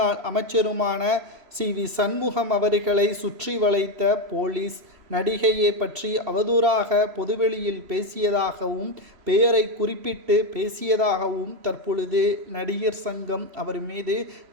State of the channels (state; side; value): late; left; 3.0 ms